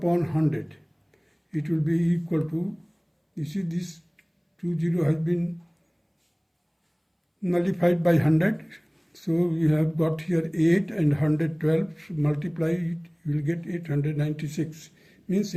100. It will be equal to, you see this 20 has been nullified by 100. So we have got here 8 and 112, so multiply it, you will get 896. Means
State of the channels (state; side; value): identical; both; correlation 1.00